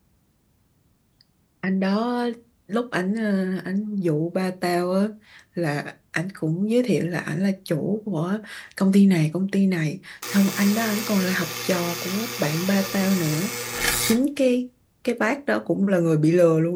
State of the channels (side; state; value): both; identical; correlation 1.00